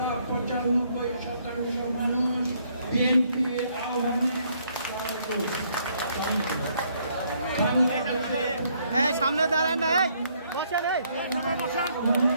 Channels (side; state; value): both; inverted; correlation -0.69